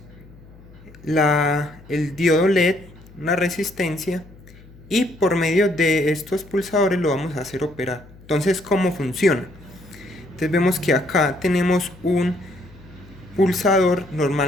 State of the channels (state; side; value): noise; left; hum, 22 dB below the sound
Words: el diodo LED, una resistencia, y por medio de estos pulsadores lo vamos a hacer operar. Entonces, ¿cómo funciona? Entonces vemos que acá tenemos un pulsador